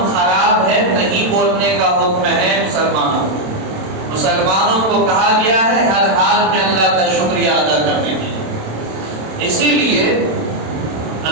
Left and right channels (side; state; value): left; late; 27 ms